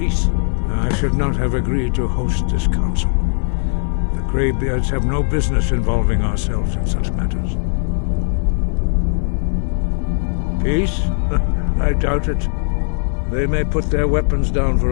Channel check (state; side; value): silent; right; 60 dB below the other